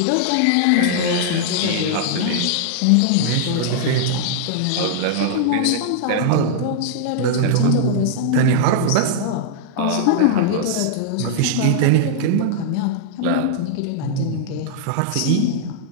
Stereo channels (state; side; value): different; both; correlation -0.01